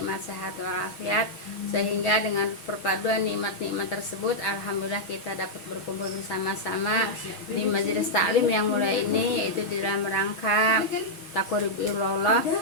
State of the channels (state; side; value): late; right; 6.3 ms